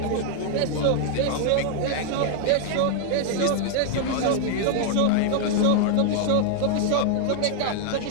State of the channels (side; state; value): both; different; correlation 0.00